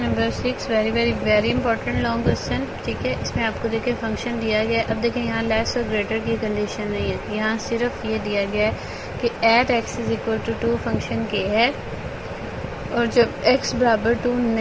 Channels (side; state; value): both; identical; correlation 1.00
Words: number 6, very important long question. ठीक है, इसमें आपको देखिए फंक्शन दिया गया है। अब देखिए यहाँ लेस और ग्रेटर की कंडीशन नहीं है, यहाँ सिर्फ ये दिया गया है कि at x is equal to 2 function के है, और जब x बराबर 2